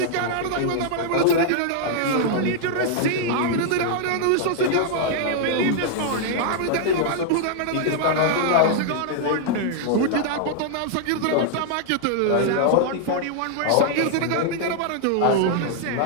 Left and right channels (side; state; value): both; different; correlation -0.01